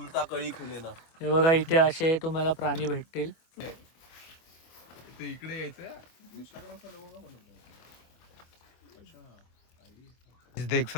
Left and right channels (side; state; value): right; late; 24 ms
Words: कळी खुले ना. हे बघा इथे असे तुम्हाला प्राणी भेटतील. ते इकडे यायचं. देख